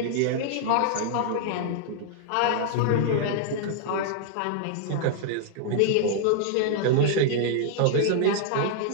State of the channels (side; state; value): both; different; correlation -0.01